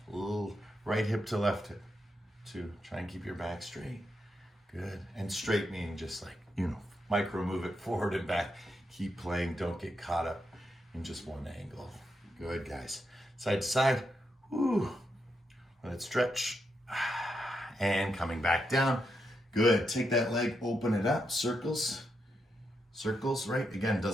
A little right hip to left hip. 2, try and keep your back straight. Good. And straight meaning just like, micro move it forward and back. Keep playing. Don't get caught up in just one angle. Good, guys. Side to side. Woo. Let it stretch. And coming back down. Good. Take that leg, open it up. Circles. Circles, right? Again,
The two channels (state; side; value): normal; both; correlation 0.83